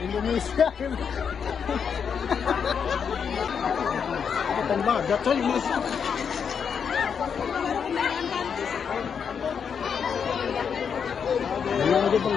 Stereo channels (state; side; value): quieter; right; 6.9 dB